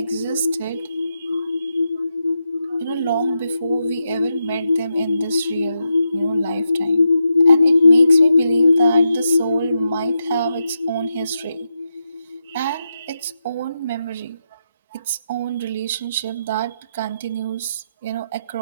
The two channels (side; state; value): both; inverted; correlation -0.86